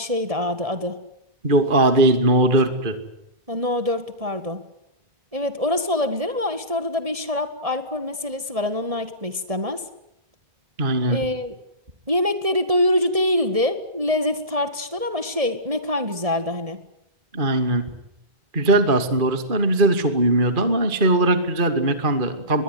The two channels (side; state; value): left; late; 1.7 ms